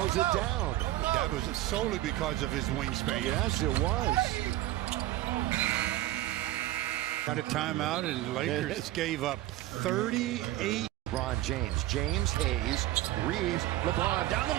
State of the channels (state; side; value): quieter; left; 15.3 dB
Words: it down. That was solely because of his wingspan. Yes, it was. Got a timeout, and the Lakers gave up 38. LeBron James, Hayes, Reaves, LeBron down the